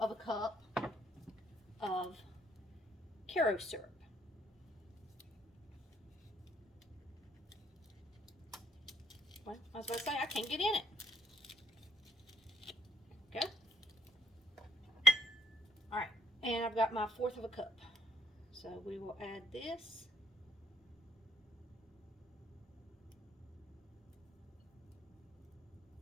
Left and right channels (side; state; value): both; normal; correlation 0.68